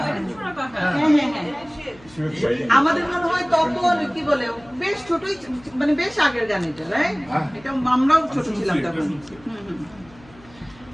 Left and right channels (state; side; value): noise; left; hum, 25 dB below the sound